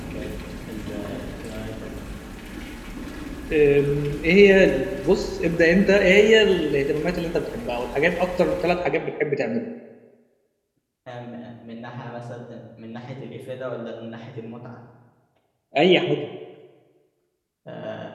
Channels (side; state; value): both; identical; correlation 1.00